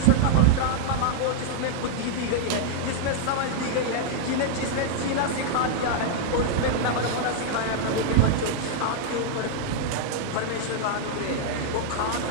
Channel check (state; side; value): different; both; correlation -0.01